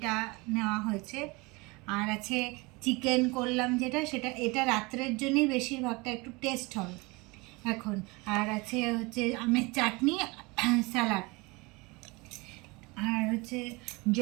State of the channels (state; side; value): quieter; left; 25.5 dB